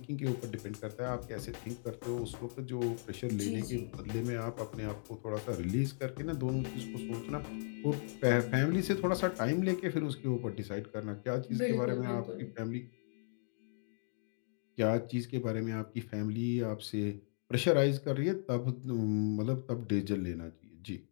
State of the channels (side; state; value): right; silent; digital silence